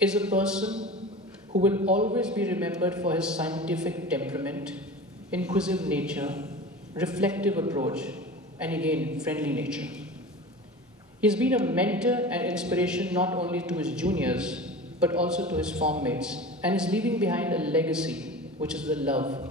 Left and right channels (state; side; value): normal; both; correlation 0.34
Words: a person who will always be remembered for his scientific temperament, inquisitive nature, reflective approach, and again, friendly nature. He's been a mentor and inspiration not only to his juniors, but also to his form mates, and is leaving behind a legacy, which is the